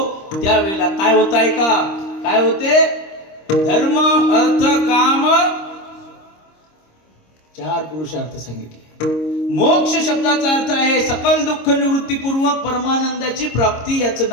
त्यावेळेला काय होत आहे का, काय होते. धर्म अर्थ काम चार पुरुषार्थ सांगितले. मोक्ष शब्दाचा अर्थ आहे सकल दुःख निवृत्तीपूर्वक परमानंदाची प्राप्ती, याचं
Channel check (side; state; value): right; late; 26 ms